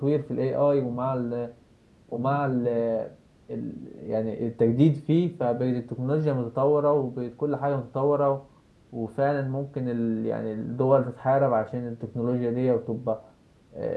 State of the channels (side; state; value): both; identical; correlation 1.00